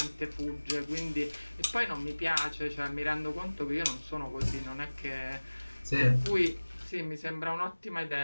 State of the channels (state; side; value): inverted; both; correlation -1.00